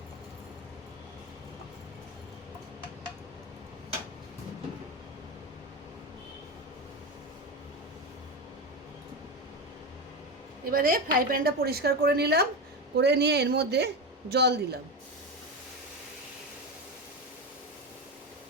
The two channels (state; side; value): normal; both; correlation 0.18